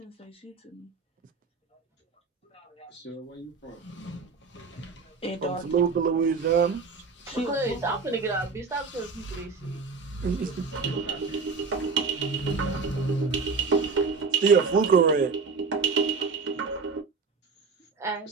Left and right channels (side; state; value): left; quieter; 4.7 dB